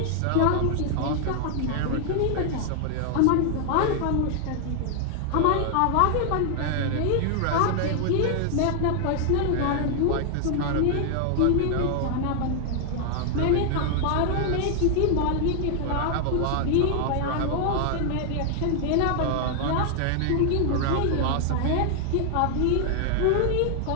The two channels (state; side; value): different; both; correlation 0.00